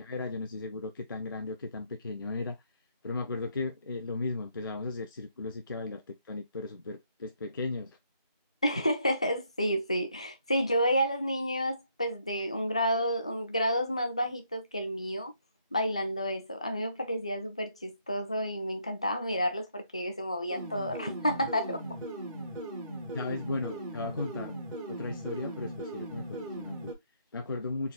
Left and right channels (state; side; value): inverted; both; correlation -0.72